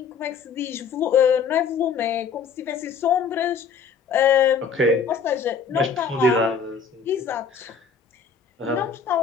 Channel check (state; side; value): quieter; right; 5.9 dB